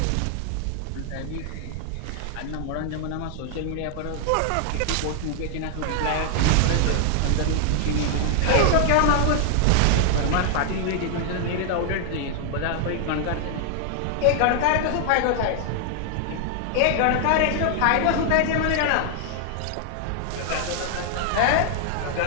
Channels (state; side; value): different; both; correlation 0.00